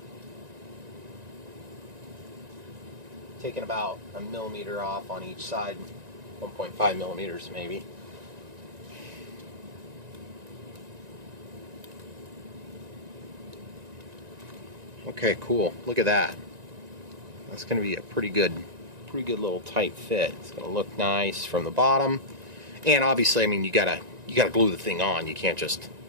Taking about 1 millimeter off on each side, 1.5 millimeters maybe. Okay, cool. Look at that. That's going to be a pretty good little tight fit. It's going to look nice from the bottom, and obviously, I mean, you gotta glue the thing on. You can't just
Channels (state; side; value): late; left; 1.9 ms